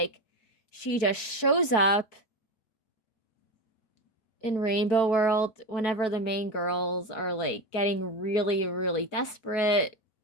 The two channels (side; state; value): right; late; 4.6 ms